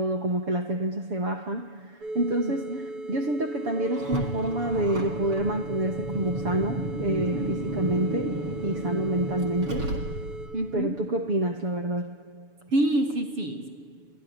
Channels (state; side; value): late; left; 7.0 ms